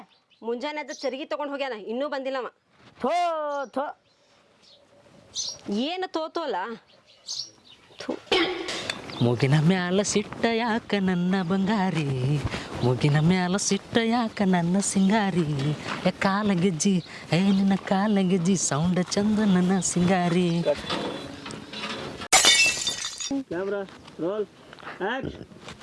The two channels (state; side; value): identical; both; correlation 1.00